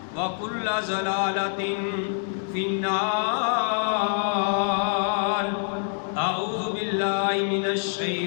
وكل ضلالة في النار. أعوذ بالله من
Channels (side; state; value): right; silent; digital silence